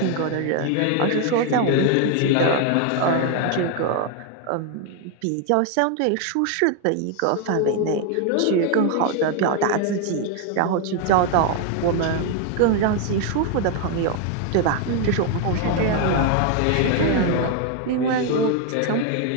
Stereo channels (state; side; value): different; both; correlation 0.01